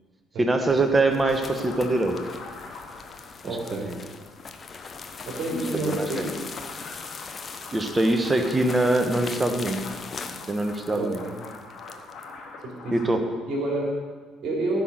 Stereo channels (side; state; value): both; normal; correlation 0.79